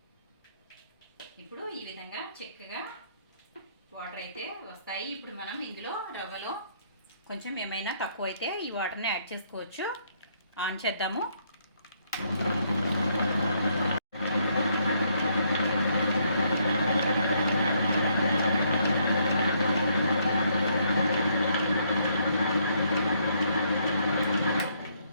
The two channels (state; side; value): inverted; both; correlation -0.71